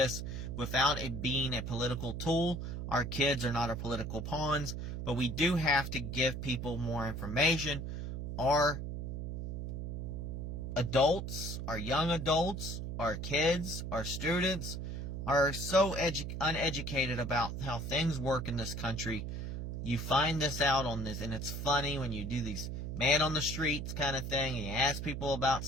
without it being a political tool. Our kids are not our political pawns, but we do have to give people more information. Our adults, our young adults, our kids, our students are so uneducated about how things work in this country. You find this out on this, and it's funny when you do these man on the streets kind of thing, and you ask people about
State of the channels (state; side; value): noise; right; hum, 5 dB below the sound